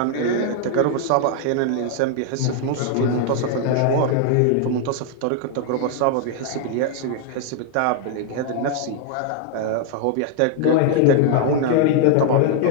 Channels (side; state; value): both; different; correlation 0.00